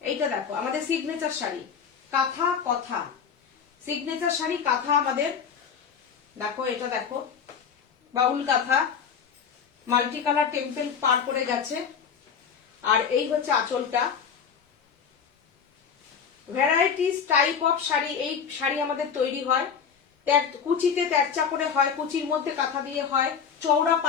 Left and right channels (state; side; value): quieter; right; 6.8 dB